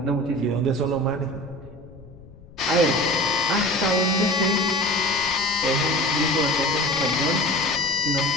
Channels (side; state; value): left; noise; rumble, 21 dB below the sound